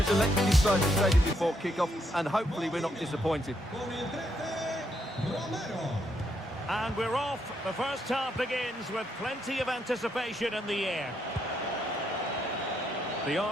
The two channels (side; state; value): both; normal; correlation 0.76